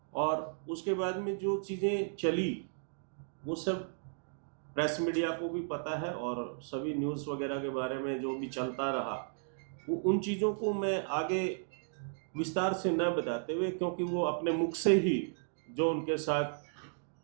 और उसके बाद में जो चीज़ें चली वो सब प्रेस मीडिया को भी पता है और सभी न्यूज़ वगैरह के बारे में जो भी चलता रहा वो उन चीज़ों को मैं आगे विस्तार से न बताते हुए, क्योंकि वो अपने मुख से ही जो उनके साथ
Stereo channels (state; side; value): silent; left; digital silence